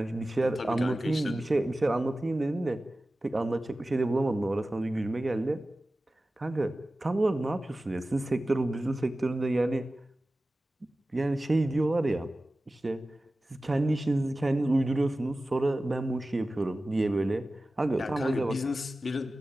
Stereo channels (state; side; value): normal; both; correlation 0.96